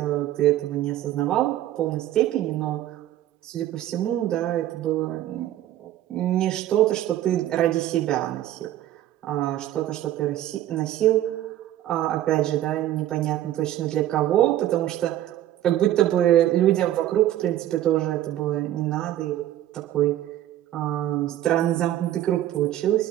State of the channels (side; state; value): left; quieter; 13.1 dB